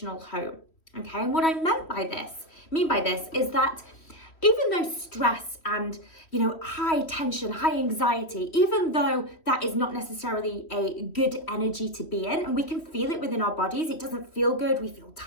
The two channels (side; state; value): right; late; 3.1 ms